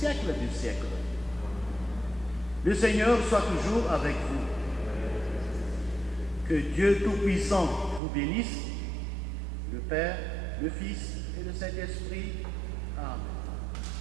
des siècles. Le Seigneur soit toujours avec vous. Que Dieu Tout-Puissant vous bénisse, le Père, le Fils et le Saint-Esprit. Amen.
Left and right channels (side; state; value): left; drops out; at 8.0 s